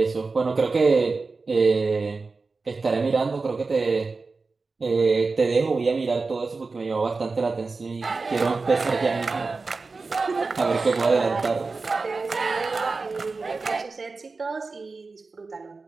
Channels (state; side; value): quieter; left; 4.0 dB